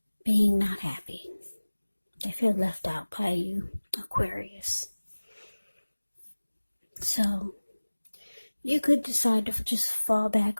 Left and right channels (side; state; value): both; inverted; correlation -1.00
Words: being not happy. They feel left out by you, Aquarius. So you could decide to just fall back,